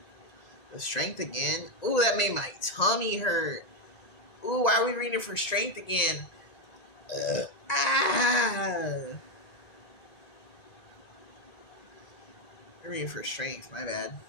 The strength again. Ooh, that made my tummy hurt. Ooh, why are we reading for strength again? Ah. I'm reading for strength. My bad.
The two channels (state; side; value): late; right; 1.9 ms